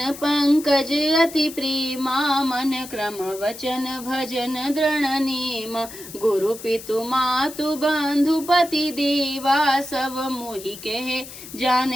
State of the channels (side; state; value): left; noise; hiss, 14 dB below the sound